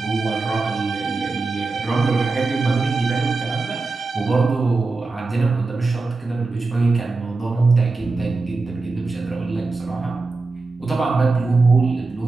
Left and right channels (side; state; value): left; quieter; 3.7 dB